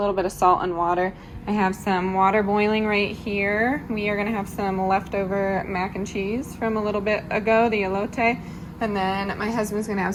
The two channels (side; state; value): both; identical; correlation 1.00